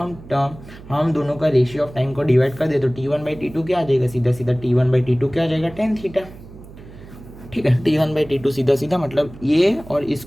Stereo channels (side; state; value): right; noise; hum, 18 dB below the sound